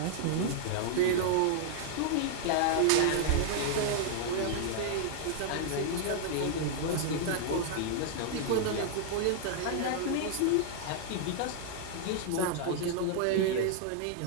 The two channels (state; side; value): different; both; correlation -0.01